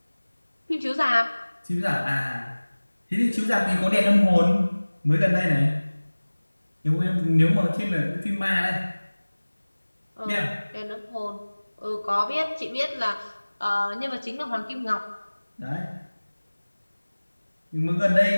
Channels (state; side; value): inverted; both; correlation -1.00